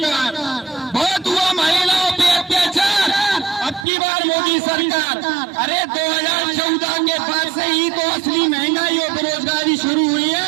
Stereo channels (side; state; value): left; drops out; at 3.9 s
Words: बहुत हुआ महिलाओं पे अत्याचार, अब की बार मोदी सरकार। अरे 2014 के बाद से ही तो असली महंगाई और बेरोजगारी शुरू हुई